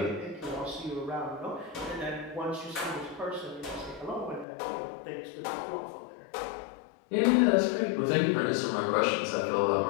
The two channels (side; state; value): right; drops out; at 4.5 s